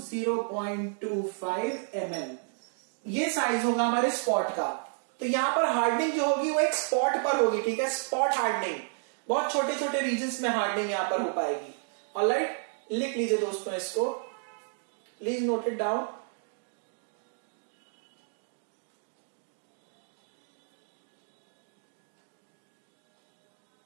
0.25 mm, ये साइज होगा हमारे स्पॉट का. तो यहां पर हार्डनिंग जो होगी वो एक स्पॉट पर होगी. ठीक है, स्पॉट हार्डनिंग, बहुत छोटे छोटे रीजन्स में हार्डनिंग यहां पर हो पाएगी. ऑलराइट, लिख लीजिए दोस्तों इसको, प्लीज नोट इट डाउन.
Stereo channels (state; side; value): silent; left; 57 dB below the other